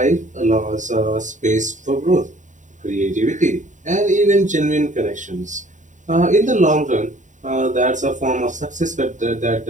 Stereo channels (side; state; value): left; late; 0.36 ms